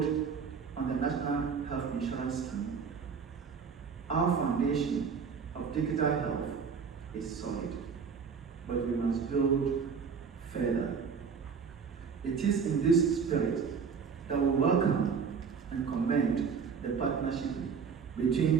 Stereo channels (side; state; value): left; quieter; 6.0 dB